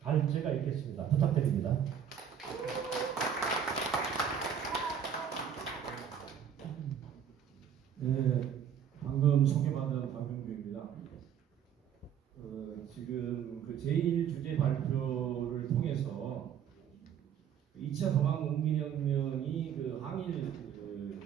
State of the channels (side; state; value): left; quieter; 8.5 dB